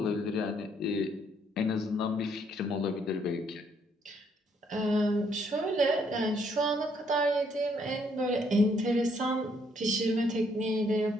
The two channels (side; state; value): both; normal; correlation 0.69